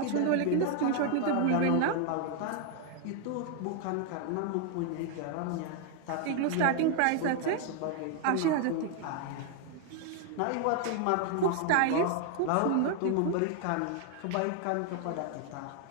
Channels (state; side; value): different; both; correlation 0.00